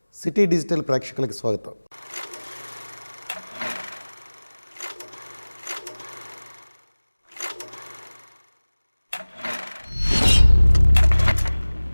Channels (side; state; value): both; inverted; correlation -1.00